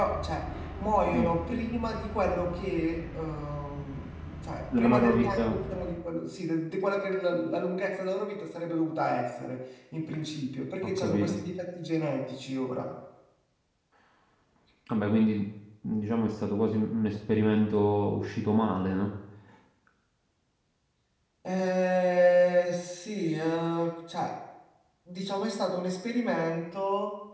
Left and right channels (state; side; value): identical; both; correlation 1.00